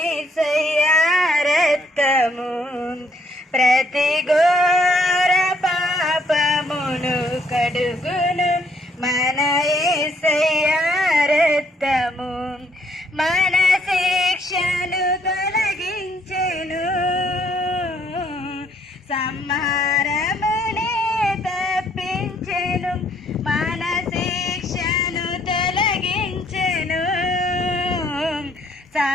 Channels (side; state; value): both; normal; correlation 0.68